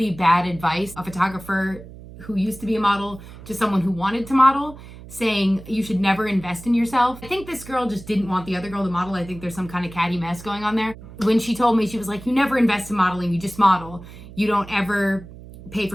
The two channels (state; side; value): noise; right; hum, 16 dB below the sound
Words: bad advice, a photographer who used to be a model to someone who wanted to model, saying you should never invest in yourself. I think this girl just didn't want the other girl to model. I think there's some kind of catty mess going on there. When she told me, she was like, you never invest in modeling, you just model. You don't ever pay